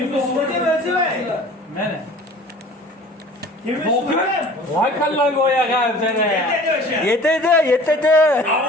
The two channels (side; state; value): both; normal; correlation 0.46